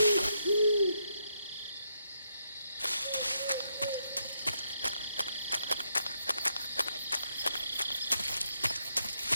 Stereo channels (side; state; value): both; inverted; correlation -0.79